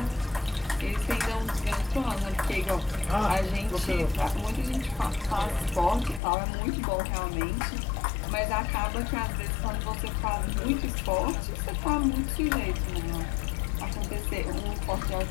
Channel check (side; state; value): right; drops out; at 6.2 s